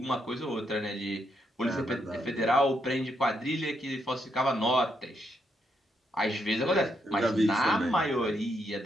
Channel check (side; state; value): both; normal; correlation 0.78